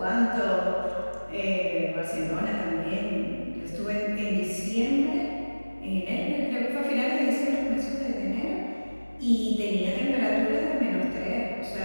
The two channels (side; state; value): both; inverted; correlation -1.00